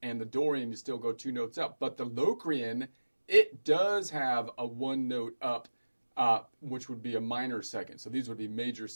and the Dorian you still go 2 notes up. But the Locrian, it does have a 1 note up, which would be a minor second. So these would be major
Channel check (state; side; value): inverted; both; correlation -1.00